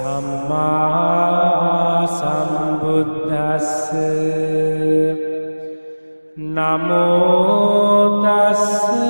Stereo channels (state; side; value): inverted; both; correlation -1.00